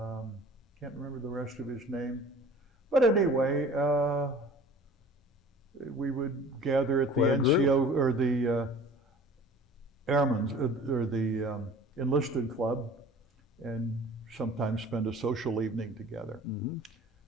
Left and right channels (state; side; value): normal; both; correlation 0.45